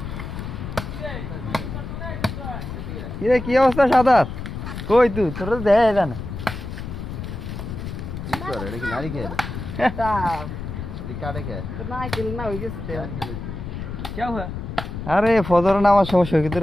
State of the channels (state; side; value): noise; left; rumble, 7 dB below the sound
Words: কিরে কি অবস্থা সাদাত কই তুই তোর দেয় না কি করে এটা কি নারী খেয়ে এটা কাটে খেয়ে তো না খেল না হই গেছে কি হলো আরে ফজর নামার সময়